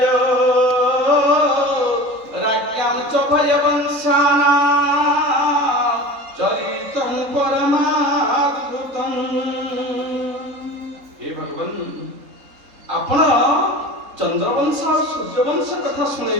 राज्ञां च भयवंशाना चरितं परमाद्भुतं। हे भगवान आपण चंद्रवंश और सूर्यवंश कथा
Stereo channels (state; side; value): late; left; 3.7 ms